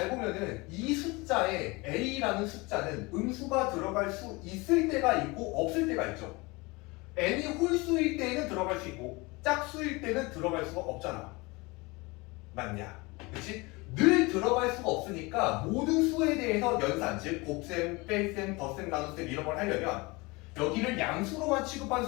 보면은 이 숫자에 a라는 숫자는 음수가 들어갈 수 있을 때가 있고 없을 때가 있죠. n이 홀수일 때는 들어갈 수 있고 짝수일 때는 들어갈 수가 없잖아. 맞냐? 그치? 늘 들어갈 수가 없으니까 모든 수에 대해서 연산, 즉 곱셈, 뺄셈, 덧셈, 나눗셈 이런 걸 하려면 여기를 양수로만 취급한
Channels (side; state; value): right; quieter; 24.7 dB